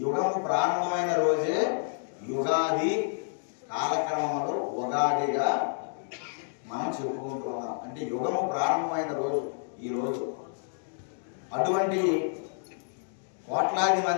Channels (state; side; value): silent; right; digital silence